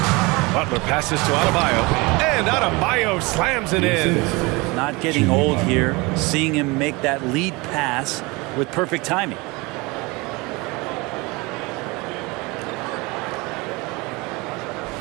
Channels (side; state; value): left; quieter; 25.0 dB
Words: Butler passes to Adebayo, and Adebayo slams it in. Not getting old here, seeing him make that lead pass with perfect timing.